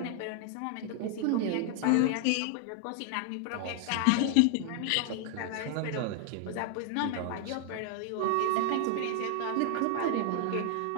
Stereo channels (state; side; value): different; both; correlation 0.00